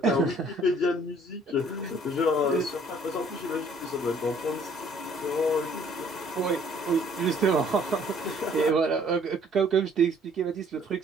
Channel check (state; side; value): normal; both; correlation 0.59